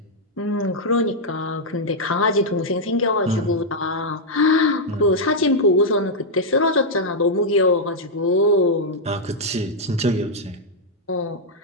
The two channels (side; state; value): both; normal; correlation -0.03